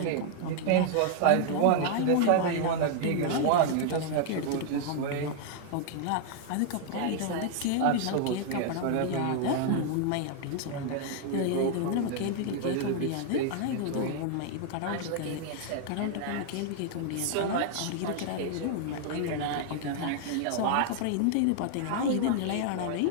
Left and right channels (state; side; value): different; both; correlation 0.00